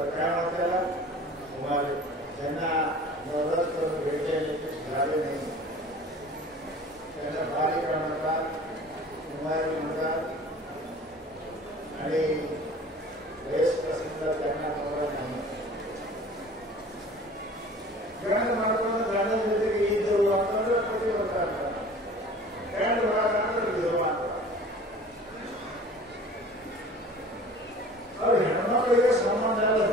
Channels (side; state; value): both; normal; correlation 0.44